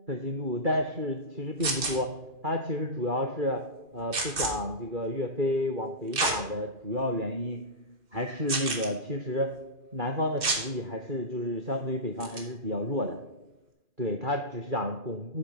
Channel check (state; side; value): late; left; 2.6 ms